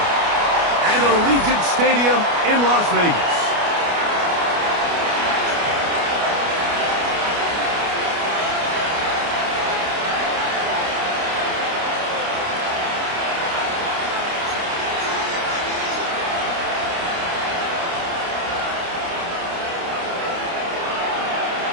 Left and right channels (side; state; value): left; late; 29 ms